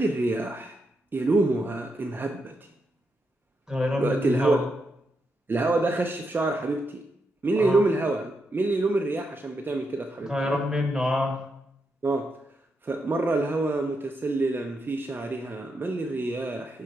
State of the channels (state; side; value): normal; both; correlation 0.83